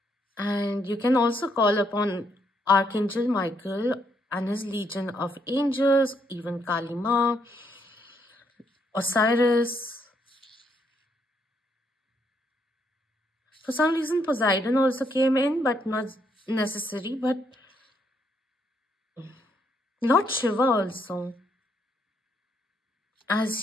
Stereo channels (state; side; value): normal; both; correlation 0.74